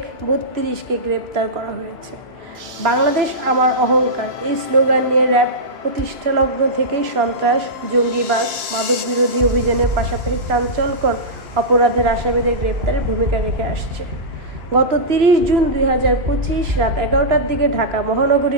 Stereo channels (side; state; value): left; late; 2.6 ms